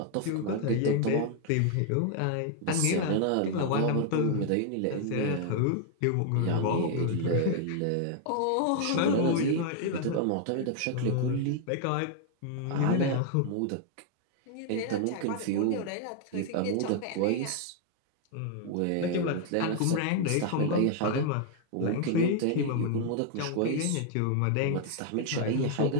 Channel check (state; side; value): different; both; correlation 0.00